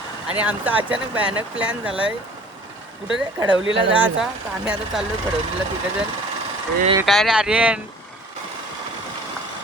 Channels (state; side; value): normal; both; correlation 0.49